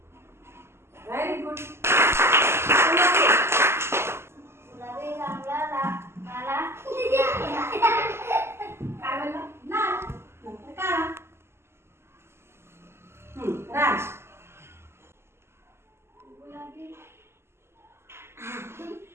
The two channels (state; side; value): late; left; 0.12 ms